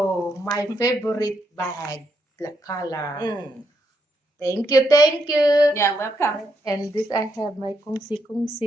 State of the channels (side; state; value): both; normal; correlation 0.78